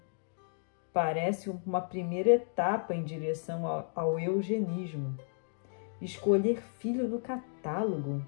Parece uma primeira etapa em direção ao eugenismo. Escolher filho no catálogo.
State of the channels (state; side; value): silent; right; digital silence